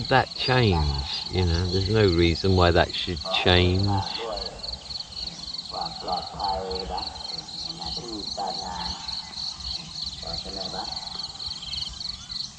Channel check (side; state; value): both; identical; correlation 1.00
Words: that change? You know, there's no reason why that should change.